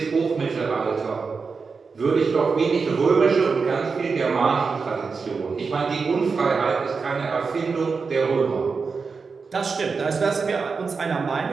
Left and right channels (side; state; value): left; quieter; 4.9 dB